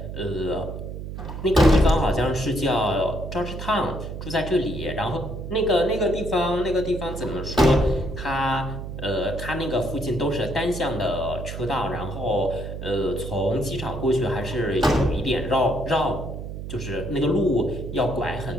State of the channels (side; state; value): right; noise; hum, 8 dB below the sound